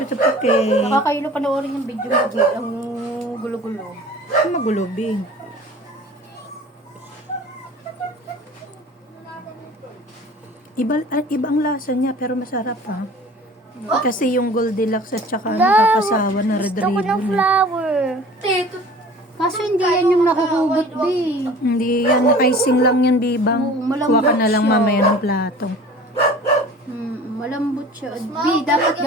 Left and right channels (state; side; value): normal; both; correlation 0.44